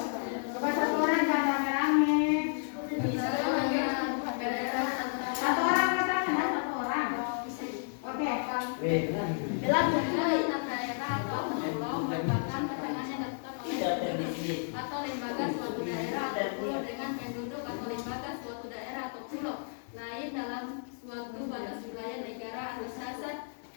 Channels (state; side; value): silent; right; digital silence